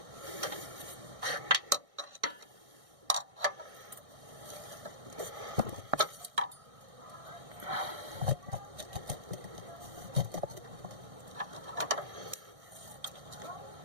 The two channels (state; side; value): late; left; 1.6 ms